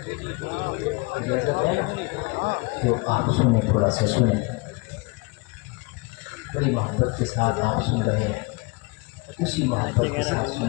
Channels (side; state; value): right; quieter; 27.5 dB